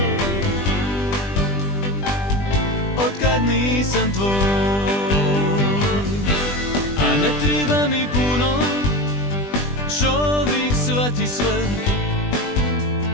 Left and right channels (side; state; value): right; late; 20 ms